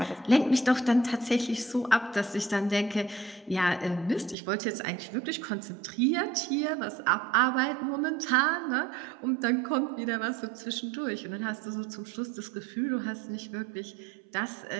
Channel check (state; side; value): drops out; left; at 4.4 s